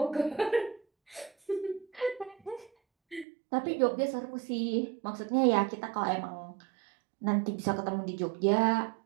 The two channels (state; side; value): drops out; left; at 3.2 s